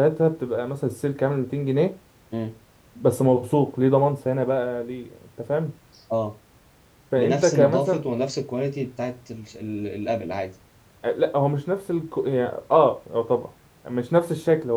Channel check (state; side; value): identical; both; correlation 1.00